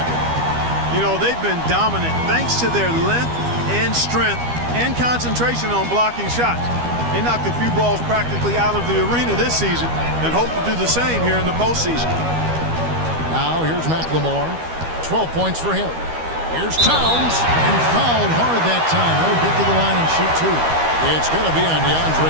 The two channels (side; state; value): left; late; 12 ms